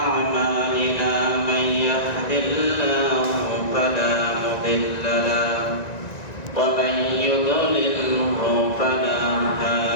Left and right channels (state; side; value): late; right; 1.9 ms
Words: أعمالنا من يهد الله فلا مضل له ومن يضلله فلا